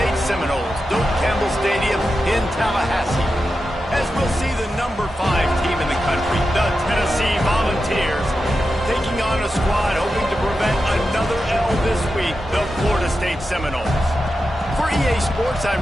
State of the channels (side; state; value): both; normal; correlation 0.90